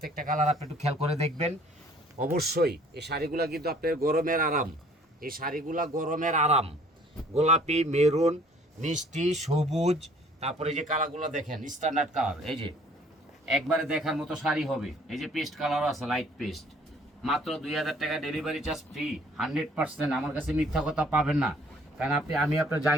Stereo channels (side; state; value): both; normal; correlation 0.56